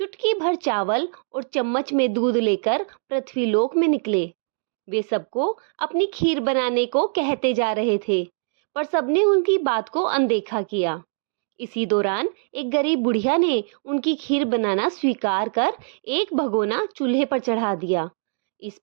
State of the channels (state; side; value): silent; left; digital silence